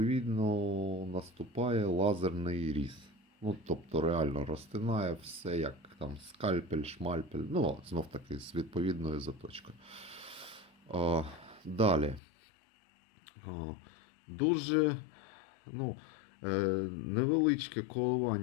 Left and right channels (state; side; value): drops out; right; at 12.2 s